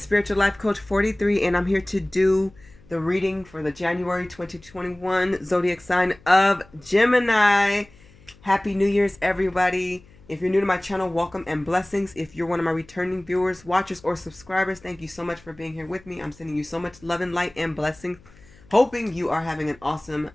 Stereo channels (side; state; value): left; noise; hum, 26 dB below the sound